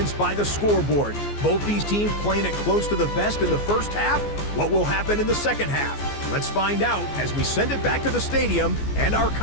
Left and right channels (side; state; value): right; late; 14 ms